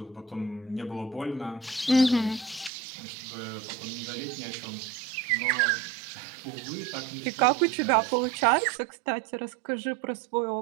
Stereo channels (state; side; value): drops out; left; at 2.7 s